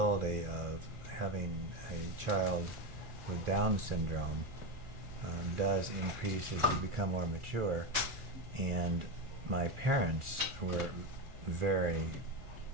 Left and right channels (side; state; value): left; late; 1.4 ms